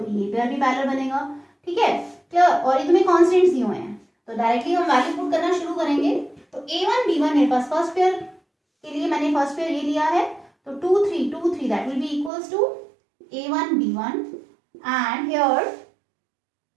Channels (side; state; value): left; drops out; at 12.3 s